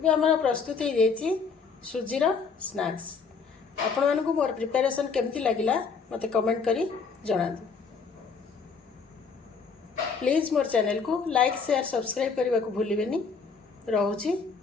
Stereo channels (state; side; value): quieter; right; 5.2 dB